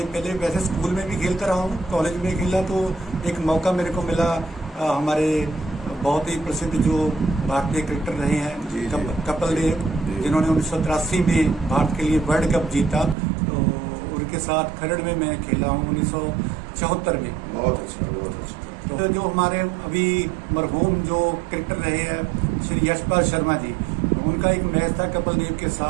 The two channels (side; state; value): left; drops out; at 13.2 s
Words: पहले वैसे स्कूल में भी खेलता रहा हूँ, कॉलेज में खेला तो एक मौका मेरे को मिला। हमारे बहुत ही प्रसिद्ध जो भारतीय क्रिकेटर रहे हैं कपिल देव, जिन्होंने 1983 में भारत के लिए वर्ल्ड कप जीता, तो उनके साथ खरड़ में मैं खेला हूँ 1974 में। बहुत अच्छा, बहुत अच्छा। तो जो हमारे अभी मरहूम जो क्रिकेटर रहे हैं श्री यशपाल शर्मा जी, उनका एक मैच था कपिल देव के